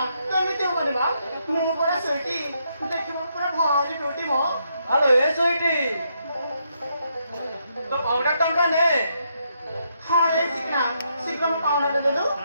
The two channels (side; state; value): both; inverted; correlation -0.77